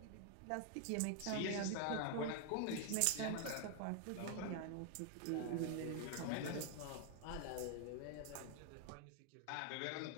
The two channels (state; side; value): different; both; correlation 0.00